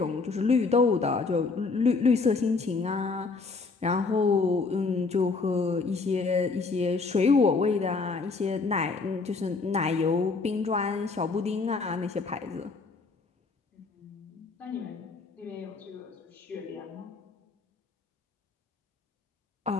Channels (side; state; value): right; quieter; 4.2 dB